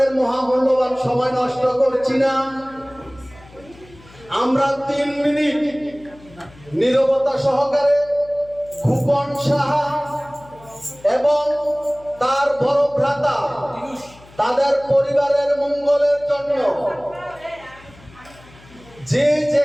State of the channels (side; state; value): left; noise; hum, 24 dB below the sound